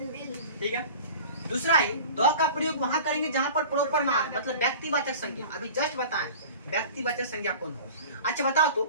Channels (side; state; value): both; inverted; correlation -0.39